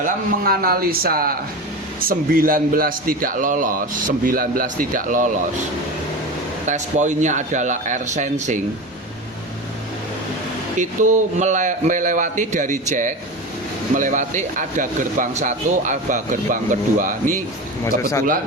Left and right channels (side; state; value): both; normal; correlation 0.26